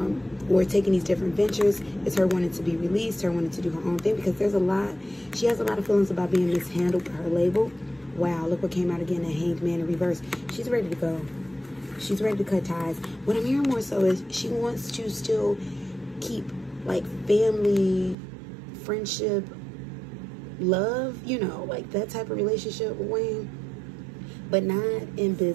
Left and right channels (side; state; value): left; drops out; at 18.2 s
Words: or taking these different ventures is her wanting to be released, her wanting to do her own thing, because she has a lot of feelings about being mishandled by her label. Wow, look what came out again, a Hanged Man in reverse. She's ready to go. She's ready to cut ties. What I'm hearing more so is she wants to still keep like family, friendship, love, you know, like that type of relationship with Wayne, but not in